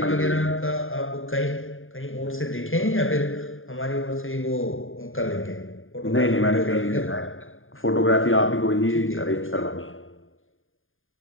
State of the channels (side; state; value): right; late; 0.59 ms